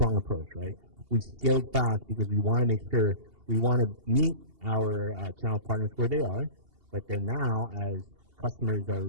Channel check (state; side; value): late; left; 2.8 ms